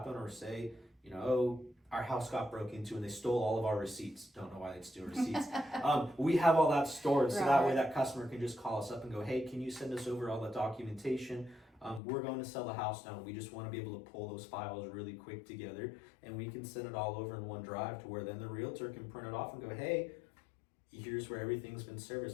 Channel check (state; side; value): drops out; right; at 12.0 s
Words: or say, our house got broke into and they stole all of our receipts. Don't know why they'd steal receipts. We have all that stored, so that way that customer can just call us up and go, hey, can you send us over all the documentation? We're going to sell the house now. We just want to be able to pull those files really quick together, and we can send it all over in one drive, to where then the realtor can print it off and go, hey, here's where everything's been